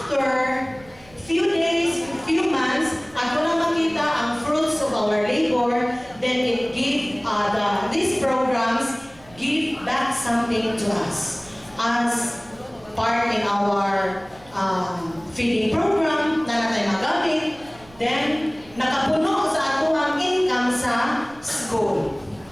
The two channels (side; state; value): right; noise; rumble, 25 dB below the sound